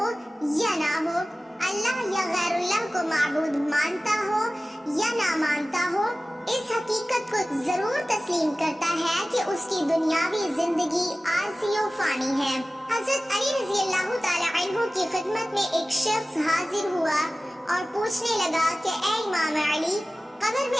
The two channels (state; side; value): normal; both; correlation 0.97